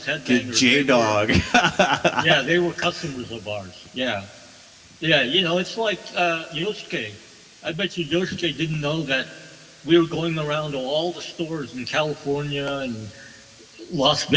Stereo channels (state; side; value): identical; both; correlation 1.00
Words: Headbanger. J-Dog. Yeah, they were customers of ours. Yeah. It's like Yosuke. I bet you Yosuke didn't know that we were going around to all the stores in California and Las